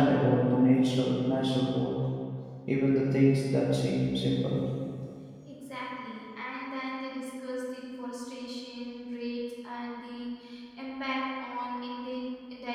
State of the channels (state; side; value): identical; both; correlation 1.00